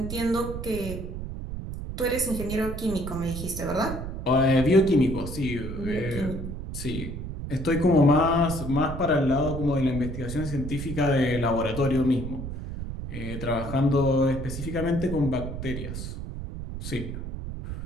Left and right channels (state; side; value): noise; right; rumble, 7 dB below the sound